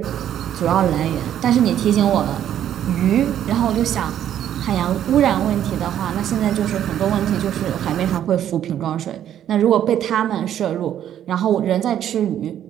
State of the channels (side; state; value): left; quieter; 10.6 dB